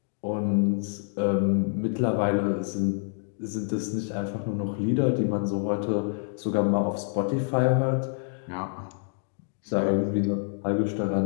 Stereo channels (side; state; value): right; silent; digital silence